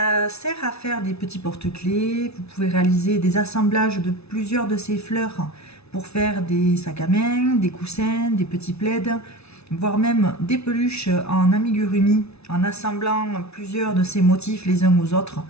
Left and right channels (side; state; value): right; late; 0.80 ms